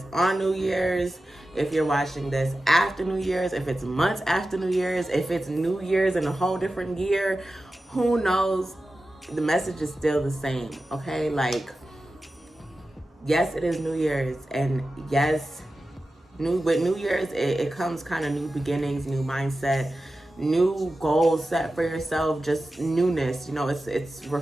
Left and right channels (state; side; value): normal; both; correlation 0.93